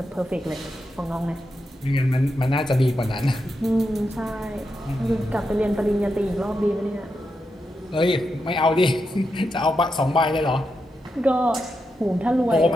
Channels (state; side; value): normal; both; correlation 0.86